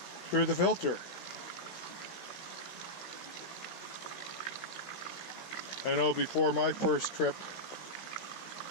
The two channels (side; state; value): right; late; 16 ms